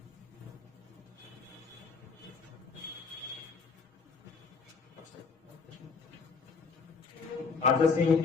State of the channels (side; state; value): right; quieter; 5.0 dB